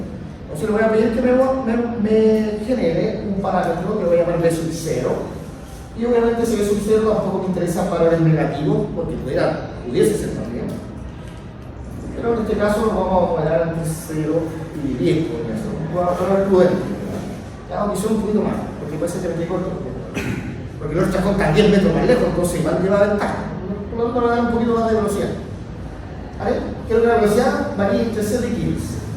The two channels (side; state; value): both; identical; correlation 1.00